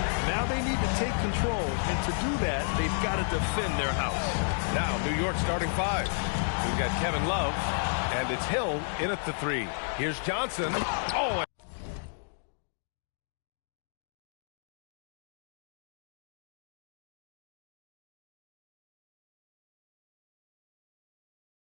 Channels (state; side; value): silent; right; digital silence